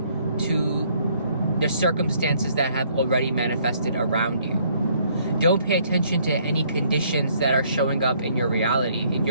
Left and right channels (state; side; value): inverted; both; correlation -0.65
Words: to the circumstances that have already manifested around you. Don't pay attention to any conditions that are showing up in your reality, in